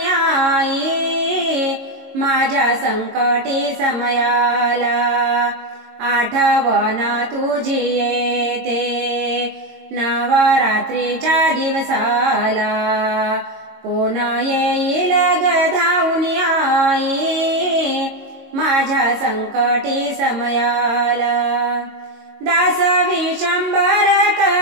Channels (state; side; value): late; left; 22 ms